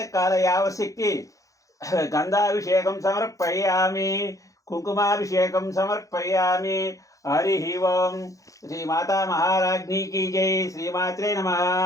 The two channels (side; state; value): right; late; 0.16 ms